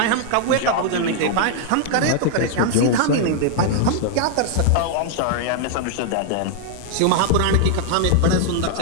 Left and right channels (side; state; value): both; different; correlation 0.00